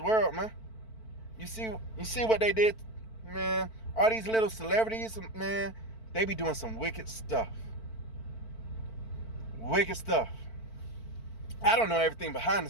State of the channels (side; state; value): right; late; 4.5 ms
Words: man. You see what they did, man? All these little celebrities, man, they be doing some wicked stuff. Wicked stuff. I don't know everything behind the